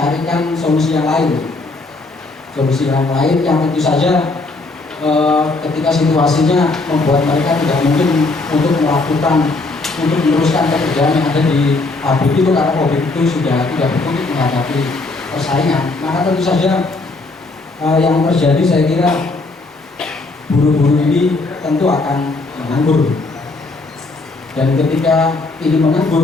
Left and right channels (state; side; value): quieter; right; 3.4 dB